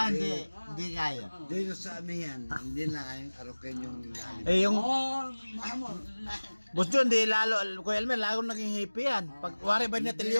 kaya. Dito sa amihan, hindi na kayang arokin yung lalim. Eh yung Mahal. Boss John, di lalo, Kuya Elmer, lalo naging hippie yan. Pag wari ba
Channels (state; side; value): inverted; both; correlation -1.00